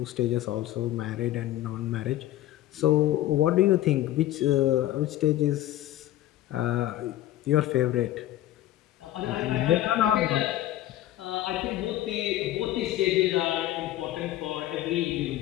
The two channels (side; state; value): right; quieter; 14.0 dB